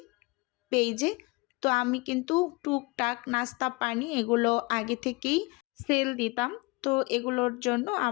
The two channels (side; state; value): right; quieter; 26.3 dB